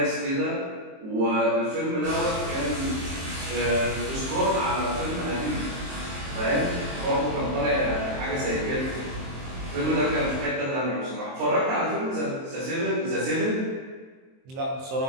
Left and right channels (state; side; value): late; left; 23 ms